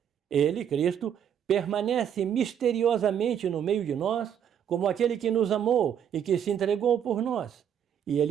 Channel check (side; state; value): left; quieter; 8.9 dB